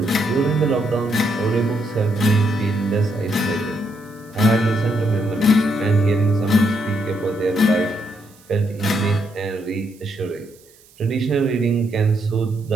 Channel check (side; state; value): right; noise; hiss, 28 dB below the sound